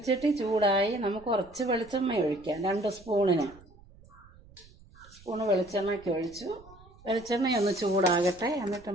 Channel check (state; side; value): noise; right; rumble, 24 dB below the sound